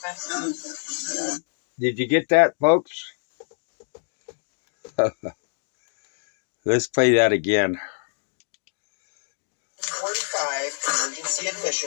Did you get that, folks? Let's play that again. 45 emergency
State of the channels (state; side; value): silent; right; digital silence